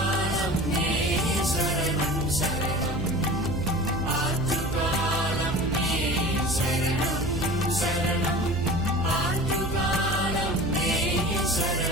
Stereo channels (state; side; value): noise; right; hum, 6 dB below the sound